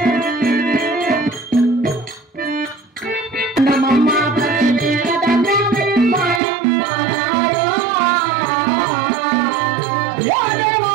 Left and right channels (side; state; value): left; drops out; at 6.4 s